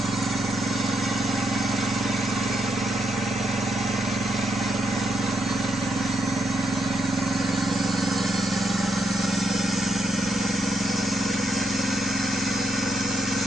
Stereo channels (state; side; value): normal; both; correlation 0.80